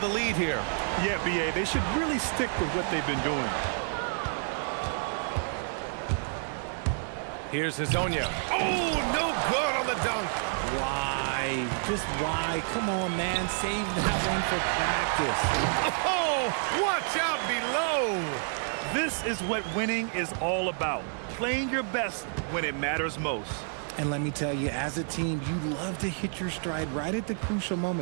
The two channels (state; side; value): silent; left; 58 dB below the other